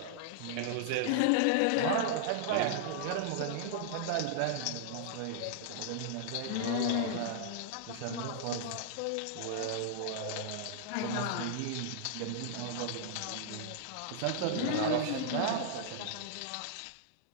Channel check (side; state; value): both; different; correlation -0.01